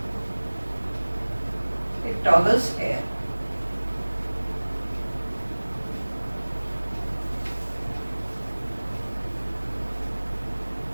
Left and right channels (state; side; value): inverted; both; correlation -1.00